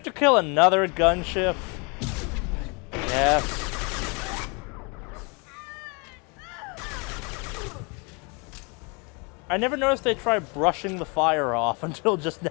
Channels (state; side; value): quieter; right; 31.7 dB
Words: to kill another gunship. Yes. I never noticed they try brushing the fire off until just